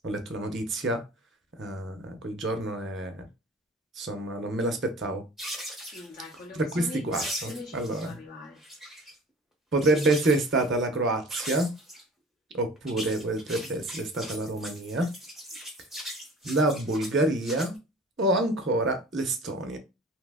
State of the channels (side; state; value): both; normal; correlation 0.44